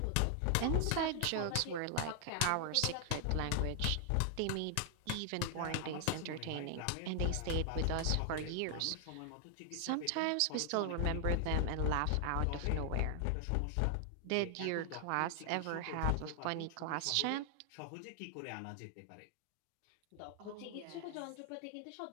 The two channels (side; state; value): both; different; correlation 0.00